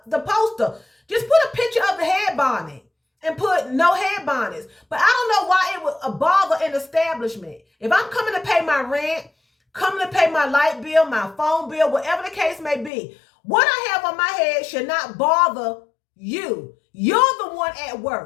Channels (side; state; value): right; drops out; at 12.9 s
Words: the poster. Just put a picture of the head bonnet and put no head bonnets. But I don't know why it would bother an establishment. If I'm coming to pay my rent, coming to pay my light bill, my phone bill, whatever the case may be, what I have on my head should not bother you. You're the one at